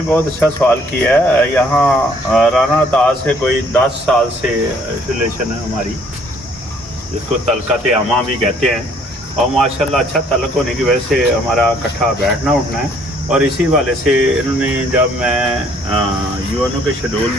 बहुत अच्छा सवाल किया है। यहाँ राना ताज से कोई 10 साल से रिलेशन है हमारी, जिसको तलकत आमा भी कहते हैं, और माशाल्लाह अच्छा तलक होने की वजह से हमारा इकट्ठा बैठना उठना है। और इसी वाले से इन्होंने, जब मैं UNO के शेड्यूल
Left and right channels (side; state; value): both; normal; correlation 0.62